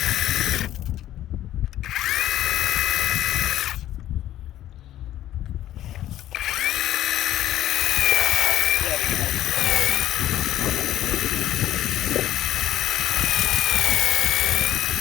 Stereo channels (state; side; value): quieter; right; 13.0 dB